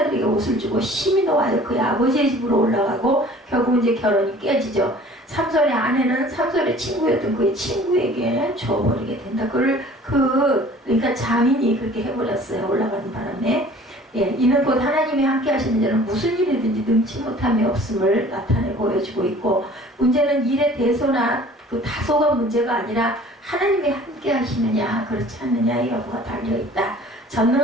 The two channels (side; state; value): both; normal; correlation 0.49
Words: 옷을 주고 심히 노하여 그의 아버지의 집으로 올라가고 결국 이제 결혼이 깨지죠. 삼손의 아내는 삼손의 친구였던 그의 친구에게 줘버리게 된다. 그러니까 자민이 그렇게 해버렸어요. 올라가는 바람에. 이는 곧 하나님이 함께 하시는 자는 무슨 일이든지 능치 못함이 없음을 나타내 보여주고 있고 문제는 일의 대소나 그 다소가 문제가 아니라 하나님이 함께 하시느냐 그렇지 않느냐의 여부가 달려있다.